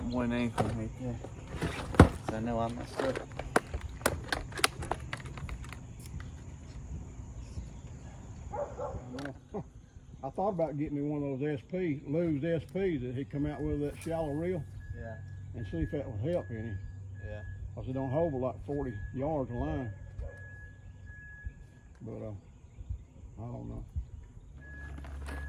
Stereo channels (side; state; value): both; identical; correlation 1.00